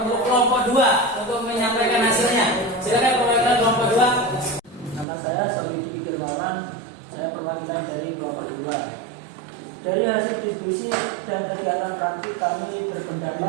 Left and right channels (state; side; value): drops out; left; at 5.1 s